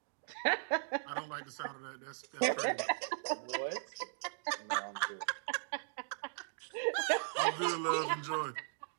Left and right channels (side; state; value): left; silent; digital silence